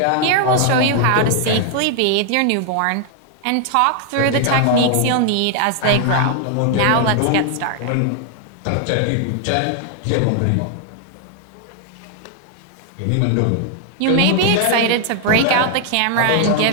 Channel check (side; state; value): both; different; correlation 0.00